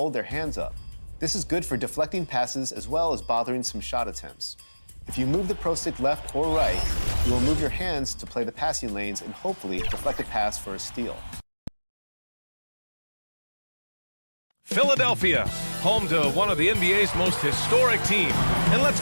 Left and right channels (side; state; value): both; inverted; correlation -1.00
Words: their hands up. This is good for deflecting passes as well as bothering some shot attempts. If you move the pro stick left or right, you will move your hands to play the passing lanes and hopefully deflect a pass for a steal. Philadelphia, home to one of the NBA's most historic teams. And let's